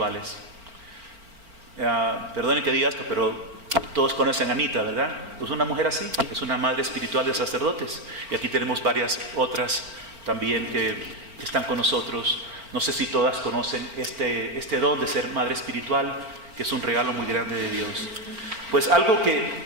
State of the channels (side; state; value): left; late; 4.4 ms